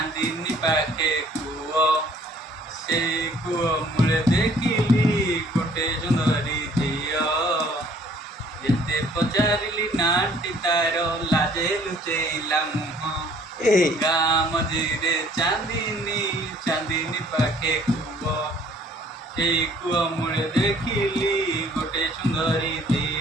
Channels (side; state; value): both; normal; correlation 0.57